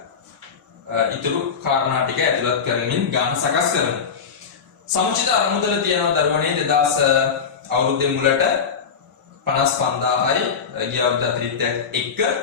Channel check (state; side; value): quieter; right; 6.3 dB